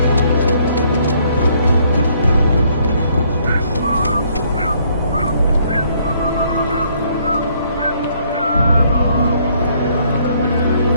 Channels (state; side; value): inverted; both; correlation -0.66